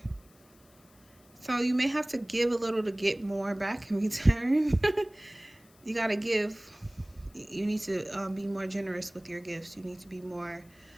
So you may have to give a little to get more back in return. You got to give. You need to be more generous with your gifts. You need to be more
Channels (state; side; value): noise; left; hiss, 29 dB below the sound